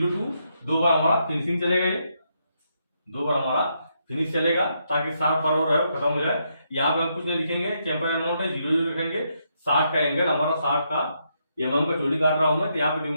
2 बार हमारा फिनिशिंग चलेगा, ये 2 बार हमारा फिनिश चलेगा ताकि 60 पर और खत्म हो जाए। यहाँ पे हम कुछ नहीं लिखेंगे, चैंपर अमाउंट है 0 0 लिखेंगे, 60 का एंगल हमारा 60 का, mm का चोटी काट रहा हूं मैं तो यहाँ पे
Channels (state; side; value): inverted; both; correlation -0.78